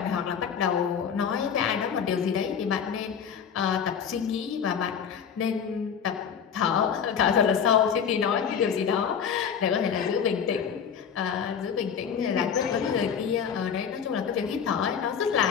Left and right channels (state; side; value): quieter; right; 7.4 dB